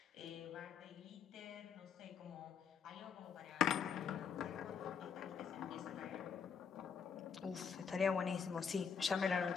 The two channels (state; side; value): quieter; right; 6.6 dB